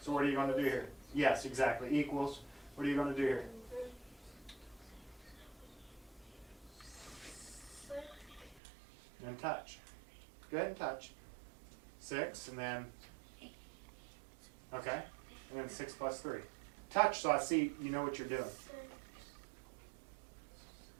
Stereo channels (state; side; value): drops out; left; at 8.6 s